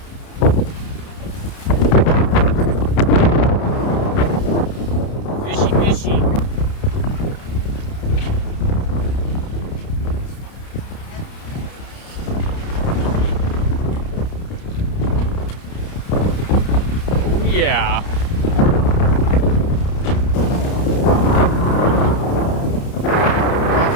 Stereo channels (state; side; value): late; right; 30 ms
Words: Fishy, fishy. Oh yeah.